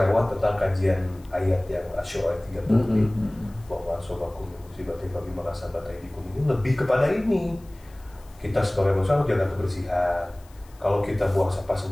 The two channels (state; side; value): noise; left; hiss, 28 dB below the sound